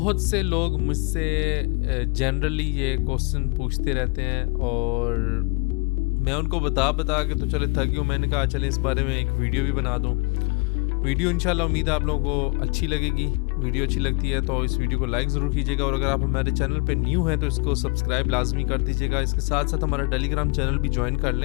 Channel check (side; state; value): right; quieter; 31.1 dB